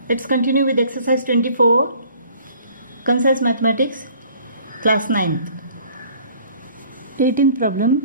Let's continue with exercise 24, Concise Mathematics, class 9th. 18th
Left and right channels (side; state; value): both; inverted; correlation -0.54